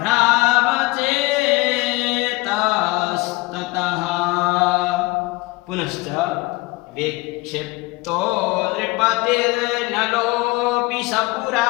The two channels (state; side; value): quieter; right; 22.6 dB